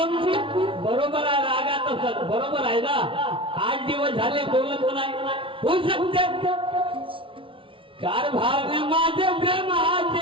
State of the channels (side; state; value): left; late; 0.25 ms